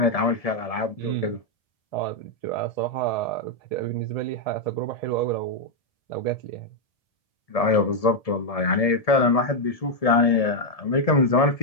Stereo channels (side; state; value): right; late; 1.7 ms